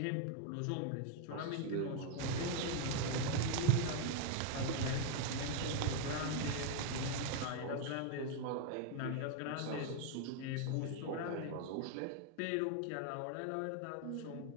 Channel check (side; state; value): both; different; correlation 0.00